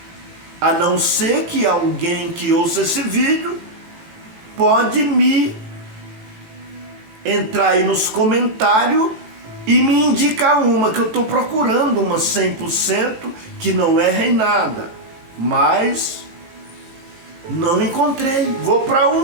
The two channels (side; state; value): left; late; 18 ms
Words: A não ser que alguém que ouça esse vídeo pode me entrar aí nos comentários e me indicar uma, que eu estou procurando uma 100% que não erra em nada. Mas não encontrei. Vou para